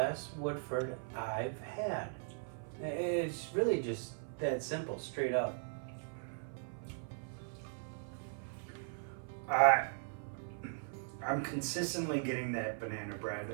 Woodford I've had. It's really just that simple, straight up. I'm consistently getting that banana bread,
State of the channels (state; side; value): silent; left; 52 dB below the other